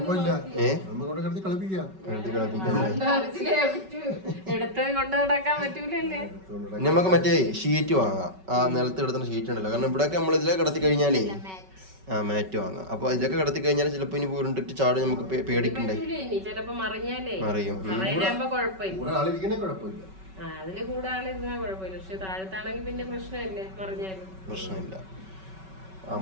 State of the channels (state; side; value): late; left; 5.3 ms